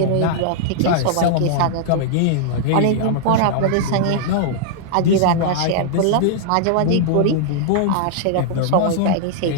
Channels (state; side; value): different; both; correlation -0.01